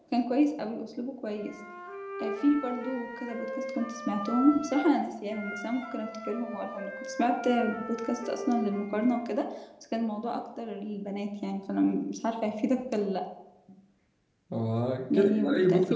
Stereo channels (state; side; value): identical; both; correlation 1.00